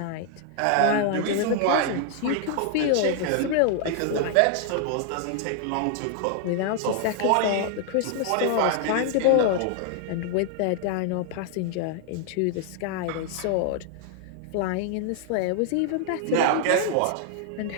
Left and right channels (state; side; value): different; both; correlation -0.01